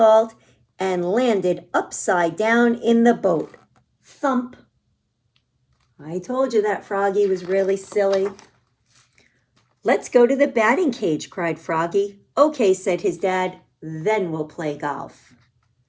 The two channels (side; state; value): both; identical; correlation 1.00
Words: and landed upside down in the boat. Thump. I told you that Froggy was really silly. Let's go to the batting cage, cried Froggy. Okay, said his dad, then we'll play golf.